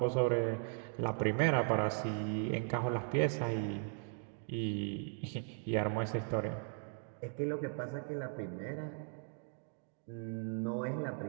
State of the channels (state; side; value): silent; left; 53 dB below the other